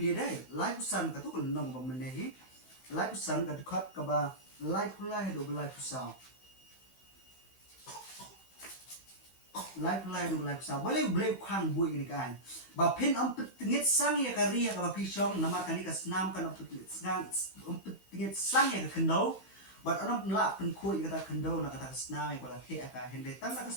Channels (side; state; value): right; late; 15 ms